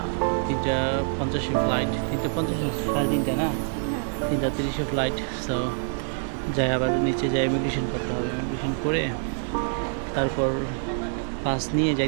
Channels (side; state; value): left; silent; 61 dB below the other